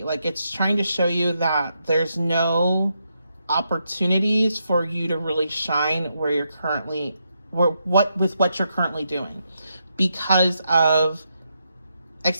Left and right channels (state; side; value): inverted; both; correlation -0.81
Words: Like, it's trying to show you that there's no opportunities for you to really shine where you're currently, with what you're currently doing, because of,